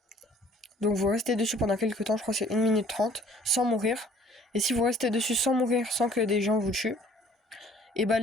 Donc, vous restez dessus pendant quelques temps. Je crois que c'est 1 minute 30 sans mourir. Et si vous restez dessus sans mourir, sans que des gens vous tuent, et bah,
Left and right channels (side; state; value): both; normal; correlation 0.56